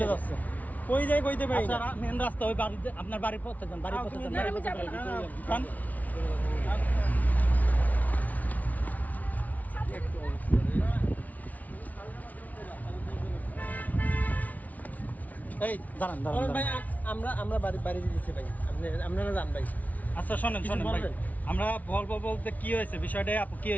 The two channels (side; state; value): right; late; 0.073 ms